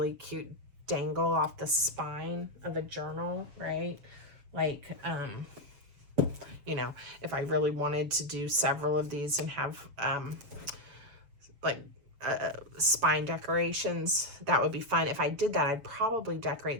cute dangle off the spine of a journal, right? Like, if I really wanted to do several of these and have, spine decorations, that would be fun. If I did that, I'd probably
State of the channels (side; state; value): left; late; 7.0 ms